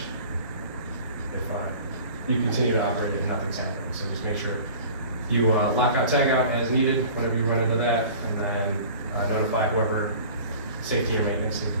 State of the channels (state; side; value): inverted; both; correlation -0.43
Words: if you continue to operate it and nothing's happening. So just make sure you lock out, tag out as needed whenever you run into that, and then notify whoever safety or maintenance need to